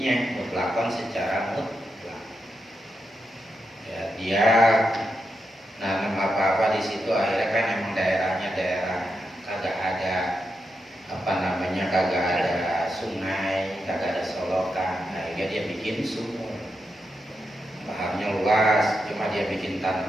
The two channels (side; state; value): both; normal; correlation 0.86